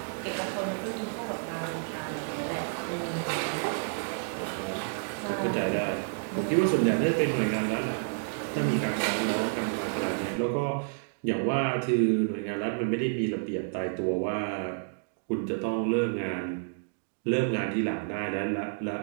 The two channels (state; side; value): silent; left; digital silence